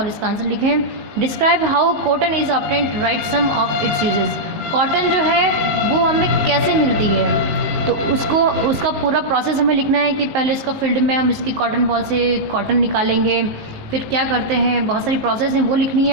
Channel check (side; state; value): left; late; 19 ms